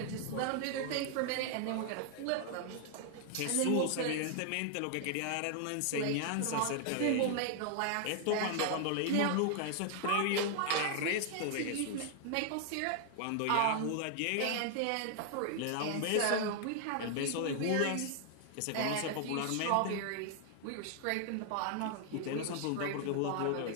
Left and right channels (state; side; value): different; both; correlation 0.00